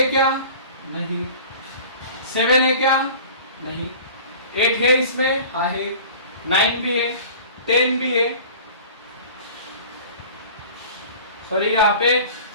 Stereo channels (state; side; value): inverted; both; correlation -0.42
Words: क्या? नहीं। 7 है क्या? नहीं। 8 है इसमें? हाँ है। 9 भी है, 10 भी है, सॉरी यहाँ पे